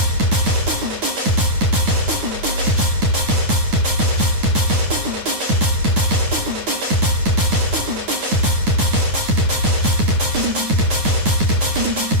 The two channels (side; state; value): left; late; 9.4 ms